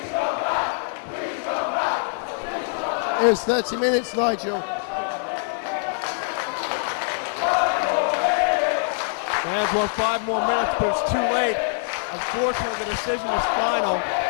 It was 30 minutes, Nigel. Fans want 5 more minutes, but it's too late. Unfortunately, the decision is final.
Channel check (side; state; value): right; silent; digital silence